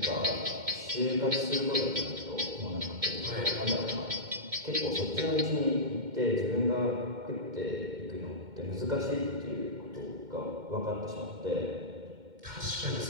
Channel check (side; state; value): left; late; 2.1 ms